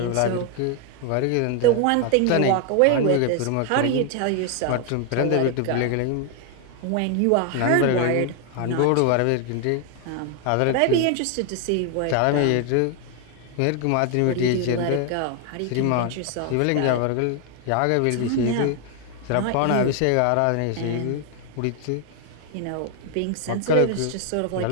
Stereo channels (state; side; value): different; both; correlation 0.00